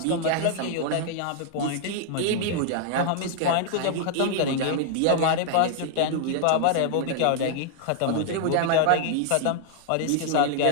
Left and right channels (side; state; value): both; different; correlation -0.01